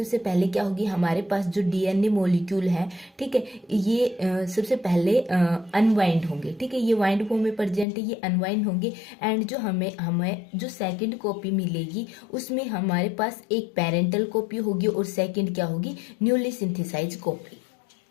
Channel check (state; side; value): drops out; right; at 7.9 s